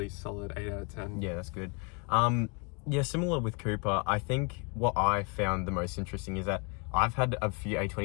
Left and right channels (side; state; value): right; quieter; 33.8 dB